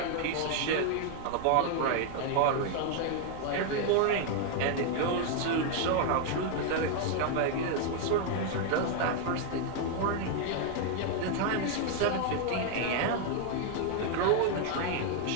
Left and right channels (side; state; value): both; different; correlation 0.00